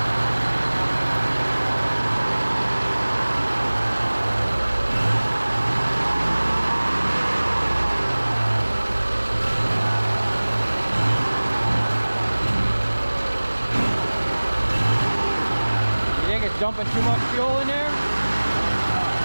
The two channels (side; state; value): both; inverted; correlation -1.00